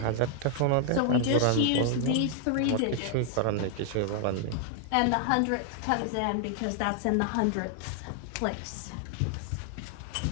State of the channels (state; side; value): different; both; correlation 0.00